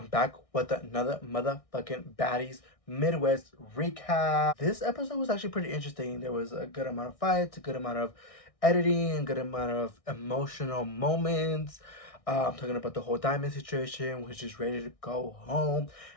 back with another motherfucking Baddies Midwest Recap. This episode was actually pretty interesting. There was a good amount of fights, a good amount of editing, a good amount of emotional moments. I'm talking about the whole diamond situation, which is ready to go home.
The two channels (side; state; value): right; late; 1.6 ms